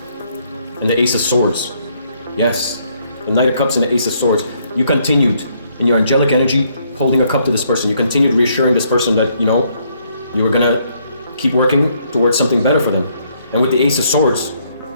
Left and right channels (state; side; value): inverted; both; correlation -0.70